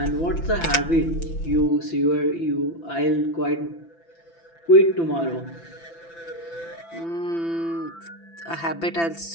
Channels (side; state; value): right; late; 5.9 ms